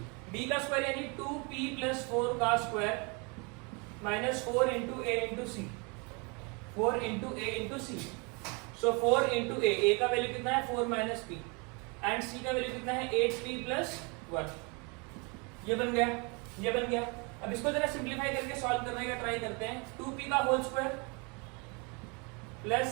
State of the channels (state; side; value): quieter; left; 31.5 dB